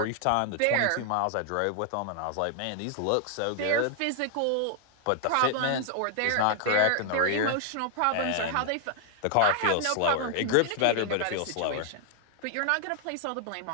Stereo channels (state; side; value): different; both; correlation 0.00